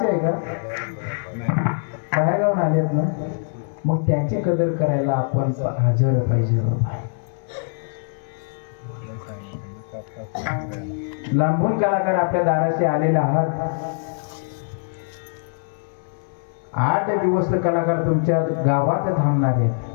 आहे का, बाहेर गावून आलेत ना, मग त्यांची कदर करायला आपण हजर पाहिजे बाबा. लांबून कलाकार आपल्या दाराशी आलेले आहात. 8 दिवस कलाकार तुमच्या गावात थांबणार आहेत.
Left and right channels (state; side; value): silent; right; 60 dB below the other